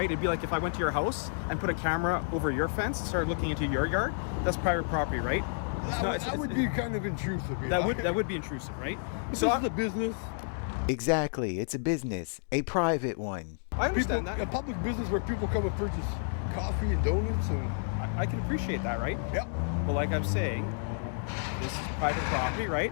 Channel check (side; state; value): right; silent; digital silence